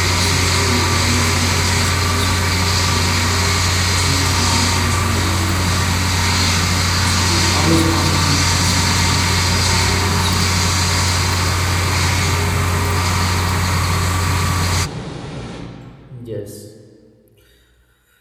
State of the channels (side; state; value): both; identical; correlation 1.00